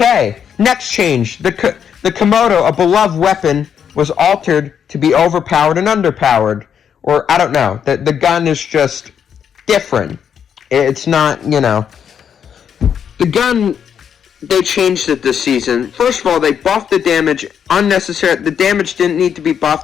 Next change. The Komodo, a beloved weapon, was altered to be overpowered and underpowered. Or, I don't know. The gun is just different. It's not, you know. The gun, they changed it this season. First of all, they buffed the damage unnecessary. The damage didn't need to be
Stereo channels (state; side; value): quieter; right; 8.0 dB